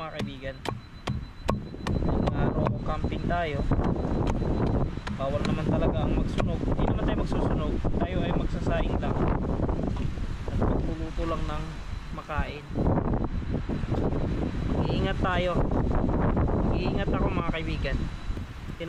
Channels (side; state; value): both; identical; correlation 1.00